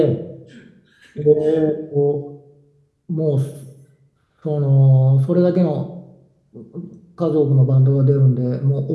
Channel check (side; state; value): both; identical; correlation 1.00